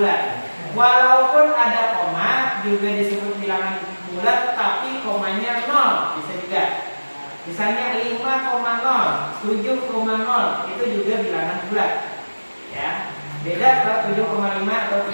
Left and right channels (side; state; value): both; inverted; correlation -1.00